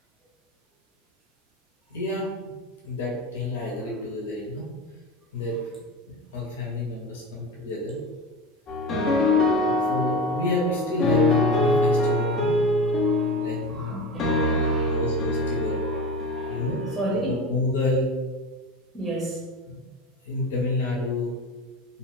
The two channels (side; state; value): both; normal; correlation 0.27